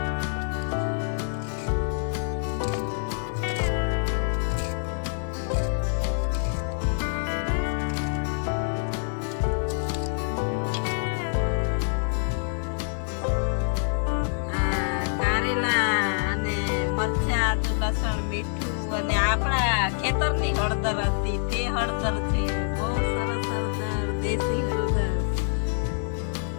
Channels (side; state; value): right; silent; 61 dB below the other